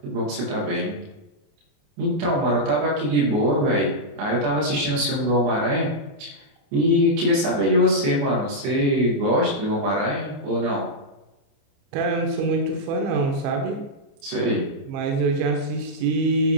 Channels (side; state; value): left; late; 29 ms